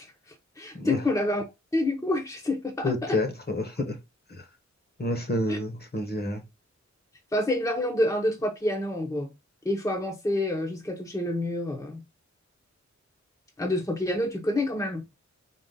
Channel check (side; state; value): both; normal; correlation 0.67